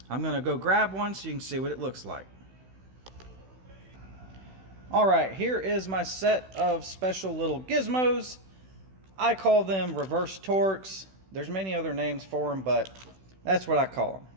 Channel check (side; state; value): left; late; 16 ms